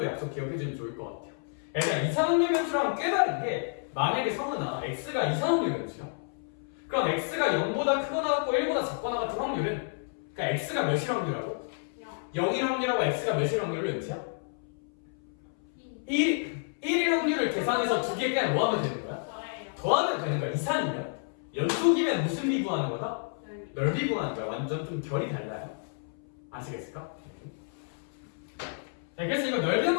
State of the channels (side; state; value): right; silent; 58 dB below the other